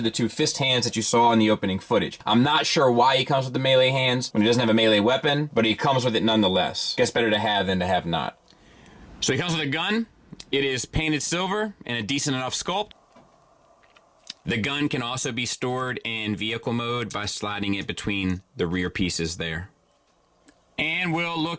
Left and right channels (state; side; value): identical; both; correlation 1.00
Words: the two fist hands that you saw in the opening footage. I'm not sure why he comes with the melee hands when he doesn't have a melee weapon, but he comes with it nonetheless. Guess better to have than to have not. So he comes with a gun. It is painted silver and a decent enough sculpt. The gun can also be stored in vehicle mode by sliding it between the rear pieces there. And we'll